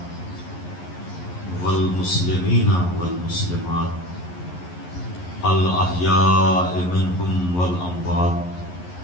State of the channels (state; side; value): late; right; 11 ms